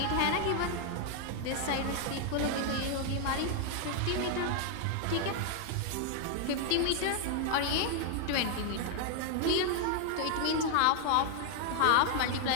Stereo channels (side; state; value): both; different; correlation 0.00